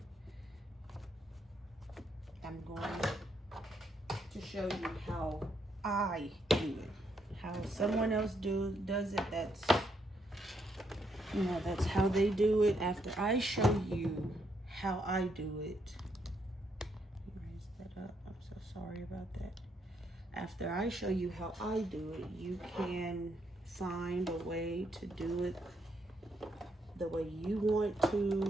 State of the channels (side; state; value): both; normal; correlation 0.75